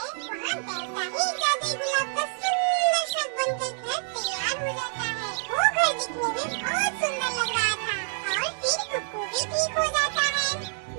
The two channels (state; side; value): silent; left; digital silence